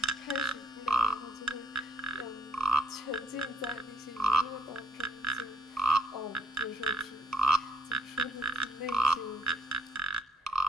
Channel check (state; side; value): normal; both; correlation 0.71